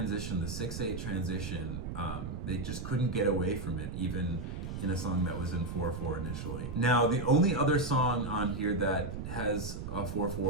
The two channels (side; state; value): right; noise; rumble, 6 dB below the sound